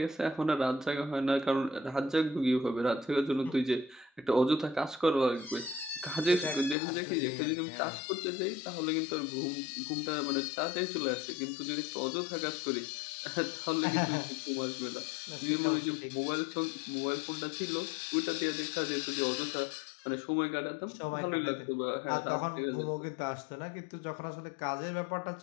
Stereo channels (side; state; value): right; drops out; at 6.8 s